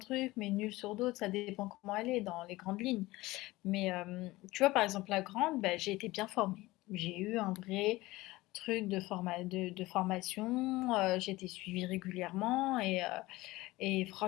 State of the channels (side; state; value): right; quieter; 19.3 dB